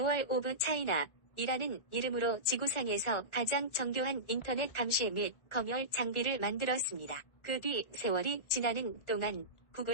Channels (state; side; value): late; right; 1.3 ms